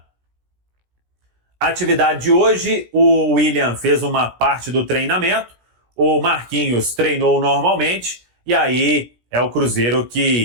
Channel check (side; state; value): left; late; 17 ms